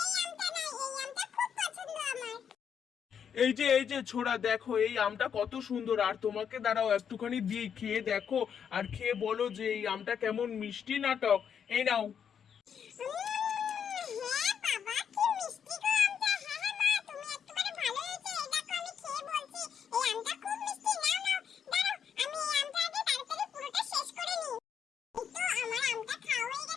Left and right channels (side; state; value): right; quieter; 7.8 dB